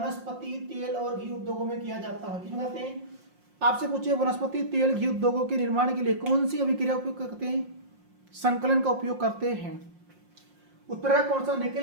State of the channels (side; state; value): left; late; 5.6 ms